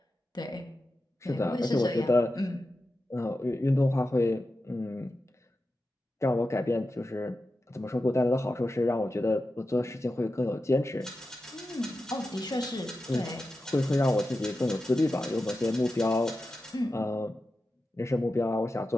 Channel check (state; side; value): normal; both; correlation 0.91